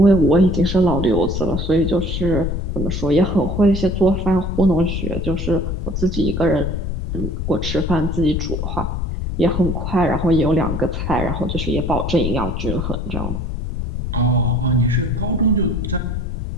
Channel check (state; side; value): noise; left; rumble, 3 dB below the sound